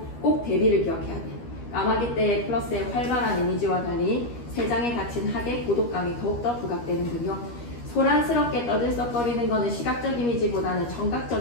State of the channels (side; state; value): right; late; 13 ms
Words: 꼭 대비를 기억해야 돼. 까마귀 때의 플러스의 활발한 이미지와 달리 세상에 갇힌 학의 고독감이 더욱더 부각되는군요. 소란스럽게 떠들썩거리는 것은 시각적 이미지보다는